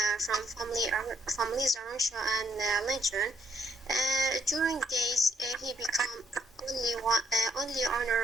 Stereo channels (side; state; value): both; normal; correlation 0.71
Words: from families Arusha and Lincoln. During days, he became only